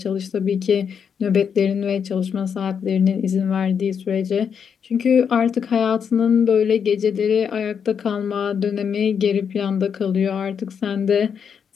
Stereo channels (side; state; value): right; quieter; 7.2 dB